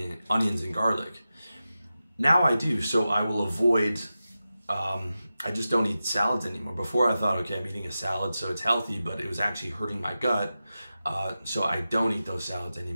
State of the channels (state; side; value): inverted; both; correlation -0.93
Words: and garlic. Now I do, so I will avoid, I just don't eat salads anymore. Before I thought, okay, I'm eating a salad, so it's healthy, but it was actually hurting my gut. So I don't eat those salads